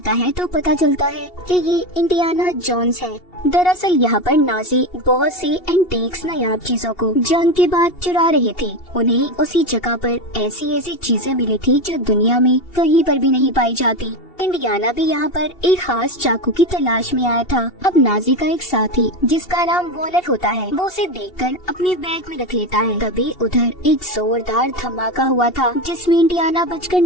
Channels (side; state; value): right; late; 2.7 ms